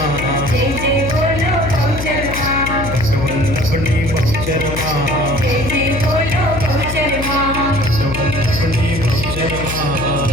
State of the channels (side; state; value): left; noise; hum, 6 dB below the sound